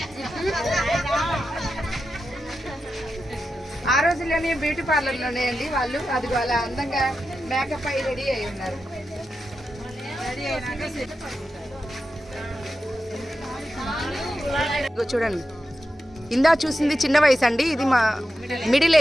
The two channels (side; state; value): both; normal; correlation 0.90